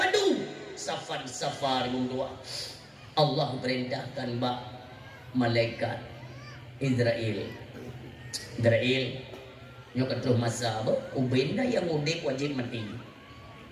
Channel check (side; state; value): both; identical; correlation 1.00